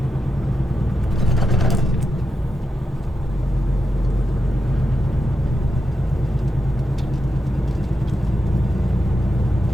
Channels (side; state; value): both; normal; correlation 0.88